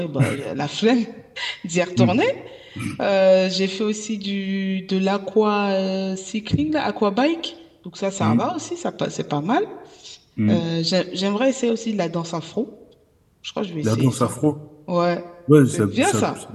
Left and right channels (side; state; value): both; identical; correlation 1.00